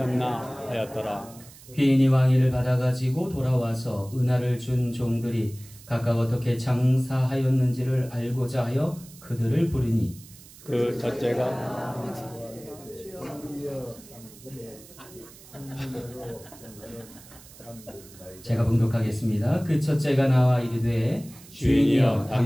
하였더라. 귀인이 왕위를 받아가지고 돌아와서 은하를 준 종들이 각각 어떻게 장사하였는지를 알고자 하여 그들을 부르니 그 첫째가 제가 봉독하겠습니다. 그 첫째가 나와 이르되 주인이여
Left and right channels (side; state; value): right; noise; hiss, 21 dB below the sound